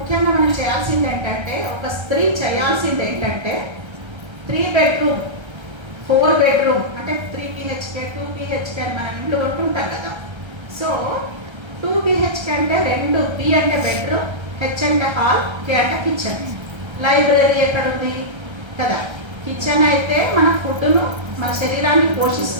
మనం చేయాల్సింది ఏంటంటే, ఒక స్త్రీ చేయాల్సింది ఏంటంటే 3 bedroom 4 bedroom అంటే 3 BHK 2 BHK అని మనం ఇంట్లో ఉంటుంటాం కదా. సో 2 BHK అంటే 2 B అంటే బెడ్రూమ్, H అంటే హాల్, K అంటే కిచెన్. లైబ్రరీ ఎక్కడ ఉంది కదా. కిచెన్ అయితే మన ఫుడ్ను, మన శరీరాన్ని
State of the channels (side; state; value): left; late; 1.3 ms